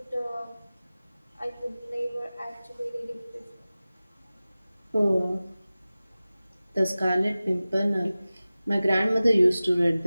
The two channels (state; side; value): inverted; both; correlation -0.97